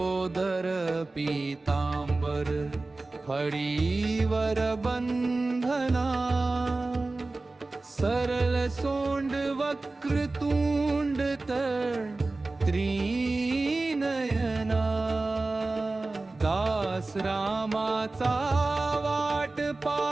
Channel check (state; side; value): quieter; left; 3.3 dB